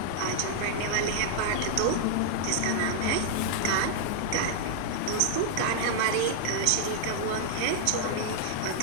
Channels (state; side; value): different; both; correlation -0.01